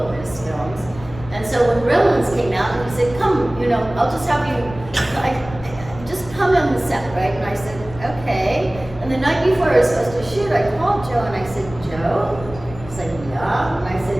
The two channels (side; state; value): left; noise; rumble, 15 dB below the sound